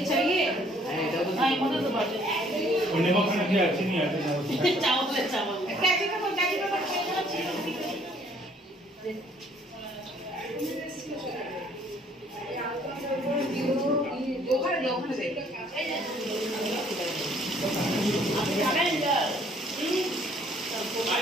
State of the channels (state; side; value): normal; both; correlation 0.61